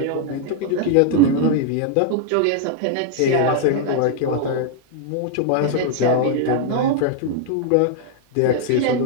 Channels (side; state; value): both; different; correlation 0.00